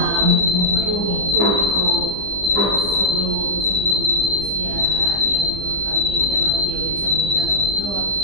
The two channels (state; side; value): late; left; 15 ms